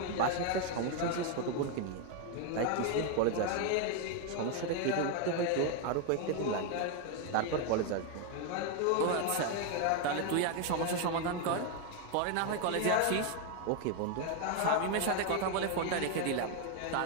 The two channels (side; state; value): both; different; correlation 0.01